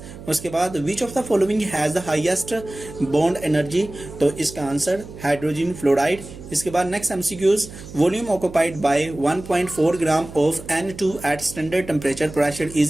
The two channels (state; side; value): noise; right; hum, 15 dB below the sound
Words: उसके बाद which of the following has the highest bond energy? तो इसका answer hydrogen fluoride. इसके बाद next MCQs volume occupied by 1.4 gram of N2 at standard temperature pressure